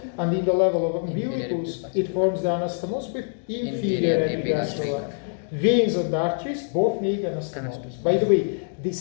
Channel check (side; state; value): right; silent; digital silence